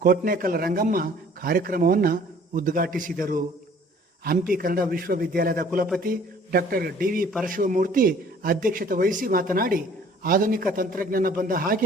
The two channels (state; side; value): normal; both; correlation 0.54